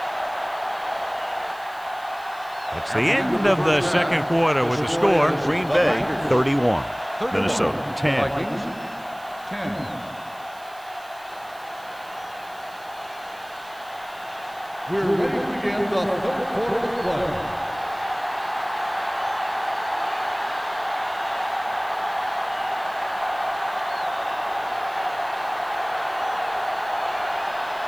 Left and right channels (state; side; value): noise; right; hiss, 24 dB below the sound